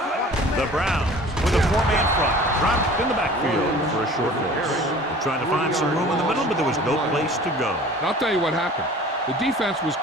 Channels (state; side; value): normal; both; correlation 0.45